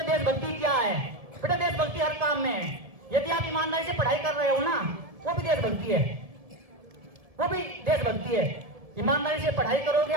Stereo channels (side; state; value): left; late; 1.7 ms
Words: देशभक्ति क्या है। बेटा देशभक्ति हर काम में है। यदि आप ईमानदारी से पढ़ाई कर रहे हो ना, वो भी देशभक्ति है, वो भी देशभक्ति है। ईमानदारी से पढ़ाई करोगे,